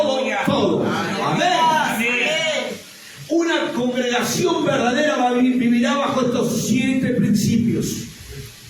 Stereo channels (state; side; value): identical; both; correlation 1.00